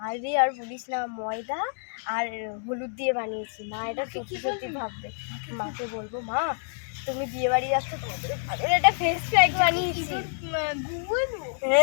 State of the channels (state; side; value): silent; right; digital silence